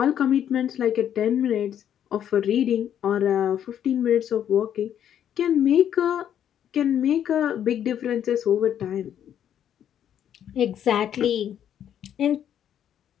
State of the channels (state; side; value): quieter; right; 9.8 dB